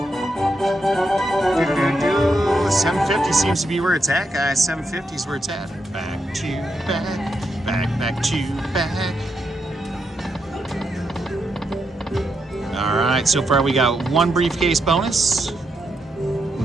750 seems to be where it's at, guys. 750 is where it's at. Back to back, back to back. All right, so far we got 1 briefcase bonus,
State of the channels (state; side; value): normal; both; correlation 0.82